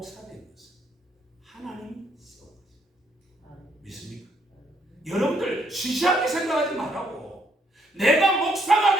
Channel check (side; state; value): both; normal; correlation 0.71